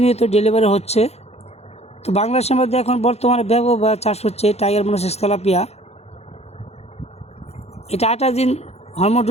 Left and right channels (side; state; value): right; late; 0.31 ms